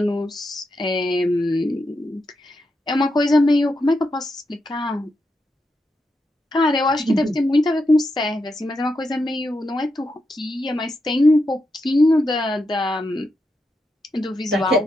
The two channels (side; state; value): both; normal; correlation 0.85